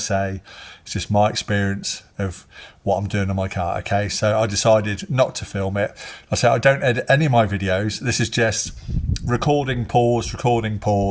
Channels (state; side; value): identical; both; correlation 1.00